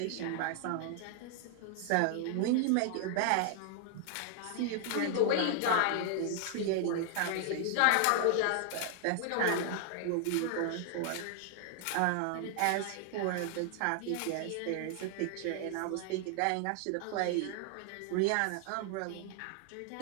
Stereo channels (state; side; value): different; both; correlation 0.00